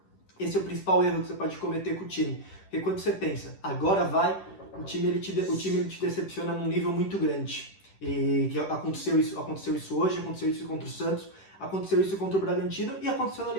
esse é o principal erro que você pode cometer com o time. Porque quando você pensa, agora vai, o time ele te decepciona num nível muito grande. E que aconteceu isso hoje, aconteceu isso contra o Santos, aconteceu isso contra o Bragantino e aconteceu na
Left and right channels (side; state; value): right; late; 10 ms